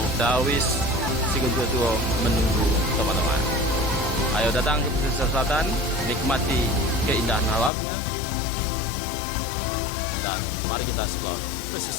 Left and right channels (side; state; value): right; drops out; at 7.7 s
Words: Dawis Siguntutuo menunggu teman-teman. Ayo datang ke pesisir selatan, nikmati keindahan alamnya, dan mari kita explore